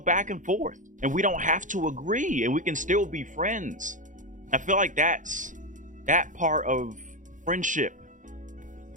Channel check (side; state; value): left; late; 0.37 ms